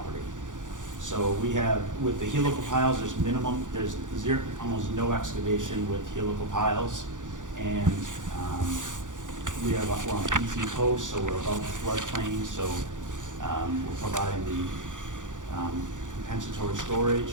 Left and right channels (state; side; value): late; left; 0.87 ms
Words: So we have, with the helical piles, there's almost no excavation with helical piles, and we're on PT posts, so we're above the floodplain, so we're providing the compensatory